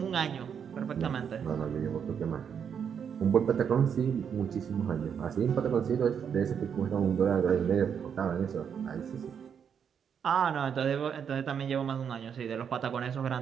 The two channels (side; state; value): left; quieter; 7.6 dB